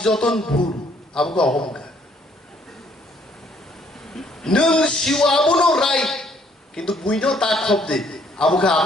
जतन भूल आबको अहंकार नों सिवा आबनो राइट किंतु बुइनो ता खबदे आबको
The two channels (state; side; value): normal; both; correlation 0.65